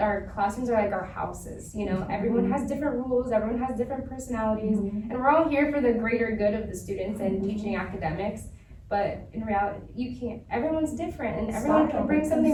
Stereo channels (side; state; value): both; identical; correlation 1.00